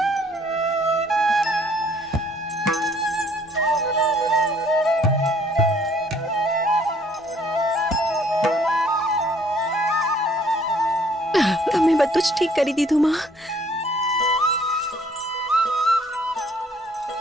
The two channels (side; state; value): both; normal; correlation 0.61